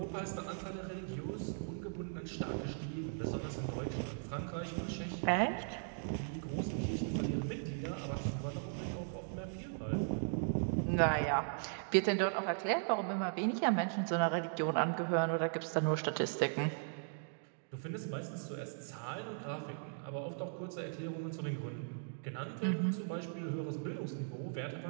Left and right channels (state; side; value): silent; left; digital silence